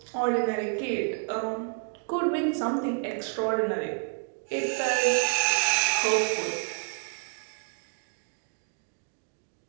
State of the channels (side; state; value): left; silent; 58 dB below the other